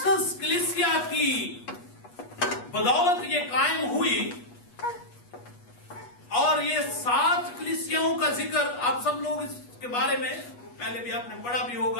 कलीसिया की बदौलत ये कायम हुई और ये 7 कलीसियाओं का जिक्र आप सब लोग इसके बारे में पहले भी आपने पढ़ा भी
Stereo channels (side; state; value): right; late; 8.3 ms